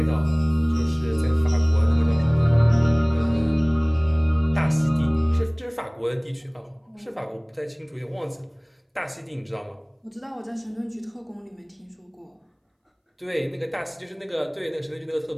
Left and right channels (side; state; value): both; identical; correlation 1.00